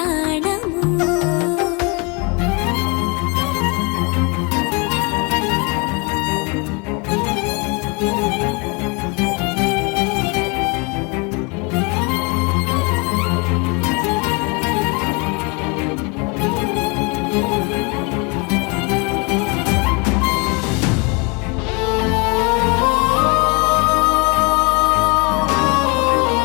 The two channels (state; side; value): quieter; right; 30.7 dB